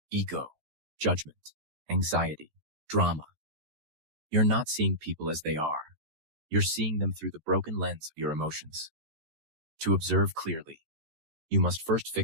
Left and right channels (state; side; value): late; left; 13 ms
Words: ego, judgment, anxiety, drama. You're not seeing people as they are. You're seeing them through the broken lens of your emotions. To observe clearly, you must first